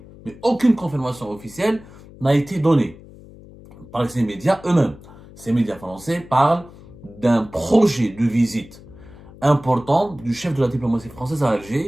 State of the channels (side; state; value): left; noise; hum, 20 dB below the sound